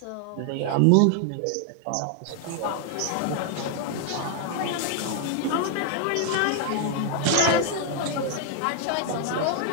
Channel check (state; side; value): different; both; correlation 0.00